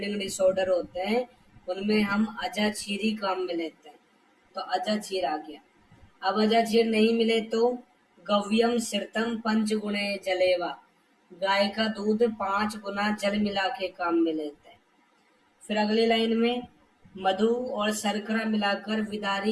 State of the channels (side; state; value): both; identical; correlation 1.00